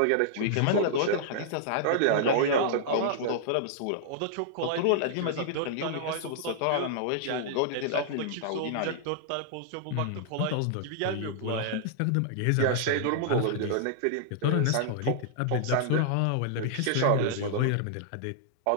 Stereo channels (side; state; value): both; different; correlation -0.01